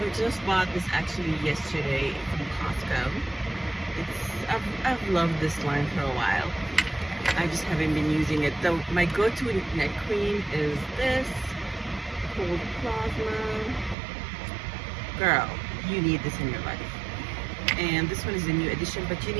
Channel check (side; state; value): left; drops out; at 14.0 s